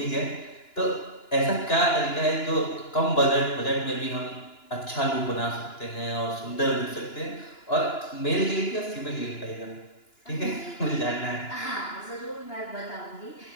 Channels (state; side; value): late; right; 2.9 ms